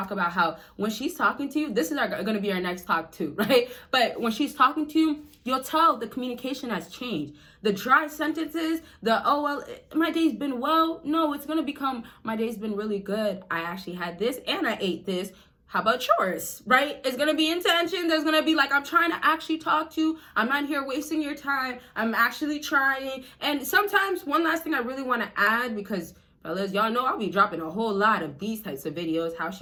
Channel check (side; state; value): both; identical; correlation 1.00